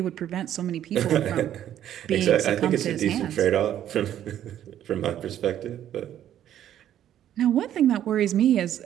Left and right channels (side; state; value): left; quieter; 11.1 dB